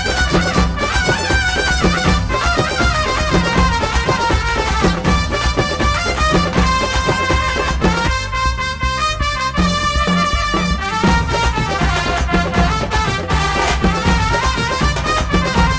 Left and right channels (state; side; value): identical; both; correlation 1.00